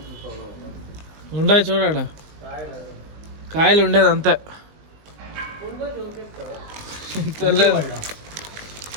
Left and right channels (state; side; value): late; left; 20 ms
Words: ఉండాయి చూడాడ కాయలు ఉండేది అంతే. తెలియదు